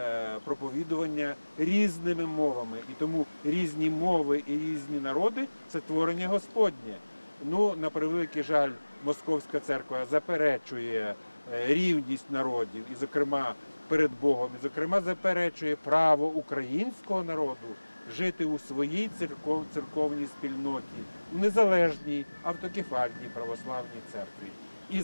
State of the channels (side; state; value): both; inverted; correlation -1.00